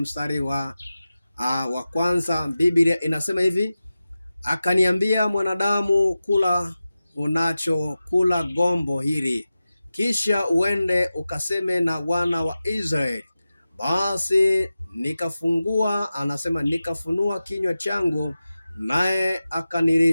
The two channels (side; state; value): both; inverted; correlation -0.94